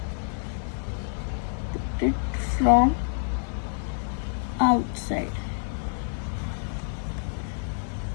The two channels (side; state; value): right; silent; digital silence